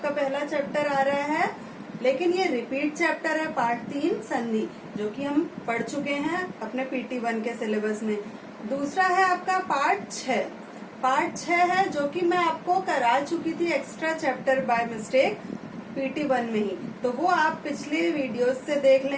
पहला चैप्टर आ रहा है, लेकिन ये रिपीट चैप्टर है। पार्ट 3 संधि जो कि हम पढ़ चुके हैं अपने PT 1 के सिलेबस में। दूसरा है आपका पार्ट 6। पार्ट 6 है जो कि मैं आपको करा चुकी थी extra chapter by mistake PT 1 में ही, तो वो आप पिछले वीडियोस से देख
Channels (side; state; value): both; identical; correlation 1.00